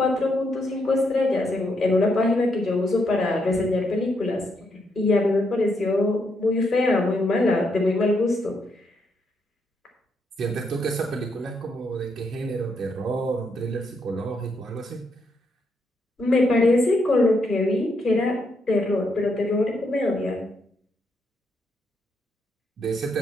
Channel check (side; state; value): both; normal; correlation 0.78